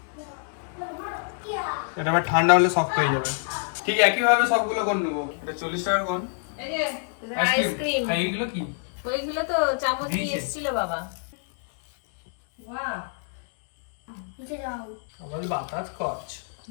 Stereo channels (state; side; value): silent; right; digital silence